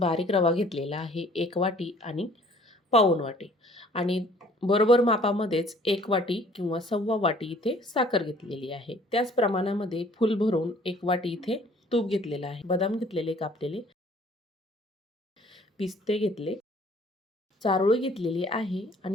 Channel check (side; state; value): both; normal; correlation 0.55